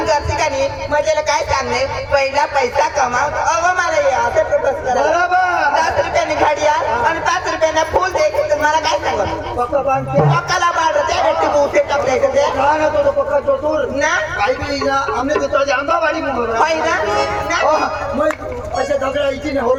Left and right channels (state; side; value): identical; both; correlation 1.00